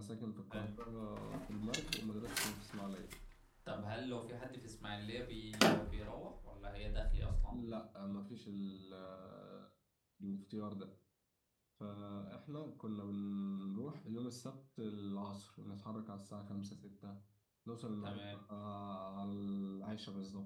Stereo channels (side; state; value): both; identical; correlation 1.00